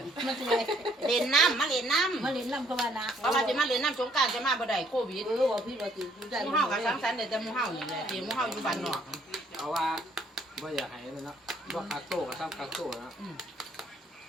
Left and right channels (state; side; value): normal; both; correlation 0.65